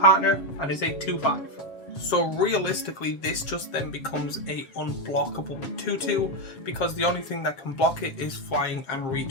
and is a 2/5. So realistically, this just then becomes a unblockable 2/2 because the only thing that can block it is flying and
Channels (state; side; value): late; right; 7.3 ms